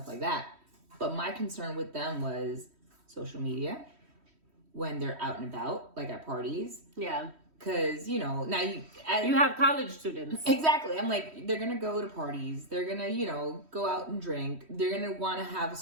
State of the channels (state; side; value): late; left; 3.1 ms